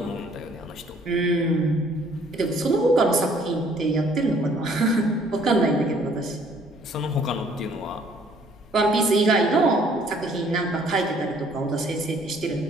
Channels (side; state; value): both; normal; correlation 0.60